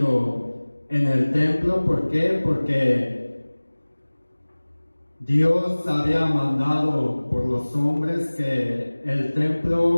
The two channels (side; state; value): both; inverted; correlation -1.00